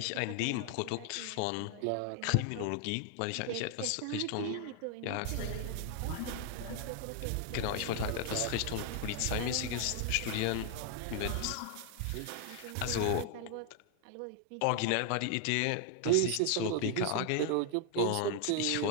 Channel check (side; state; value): both; different; correlation 0.00